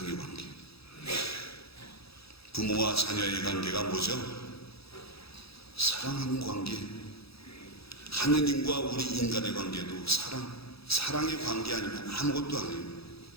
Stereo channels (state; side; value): late; right; 0.77 ms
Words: 관계. 부모와 자녀의 관계가 뭐죠? 사랑하는 관계. 하느님과 우리 인간의 관계도 사랑의 관계 아니면 아무것도 아니에요.